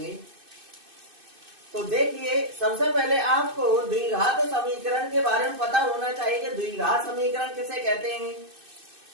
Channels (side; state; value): left; late; 2.6 ms